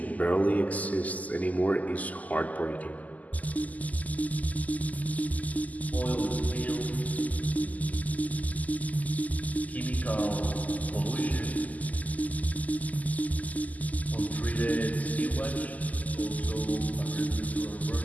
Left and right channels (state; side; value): late; right; 0.077 ms